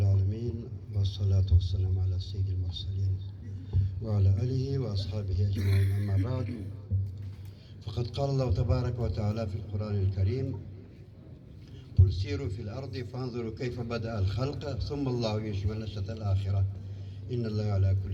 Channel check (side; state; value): both; identical; correlation 1.00